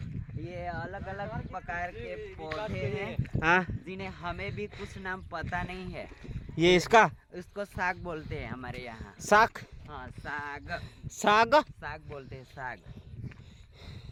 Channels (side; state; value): both; identical; correlation 1.00